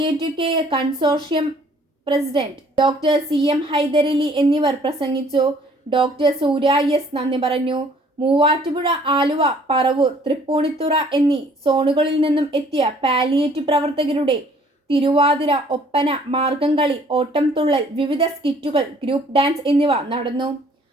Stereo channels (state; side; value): normal; both; correlation 0.58